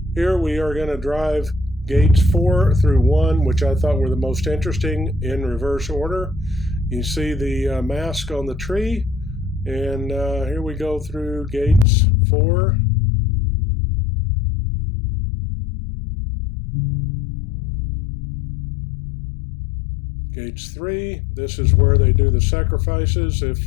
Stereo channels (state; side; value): drops out; right; at 11.9 s